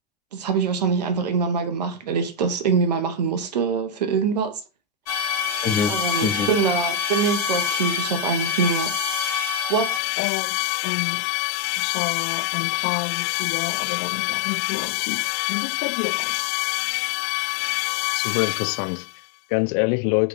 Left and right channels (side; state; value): right; drops out; at 10.0 s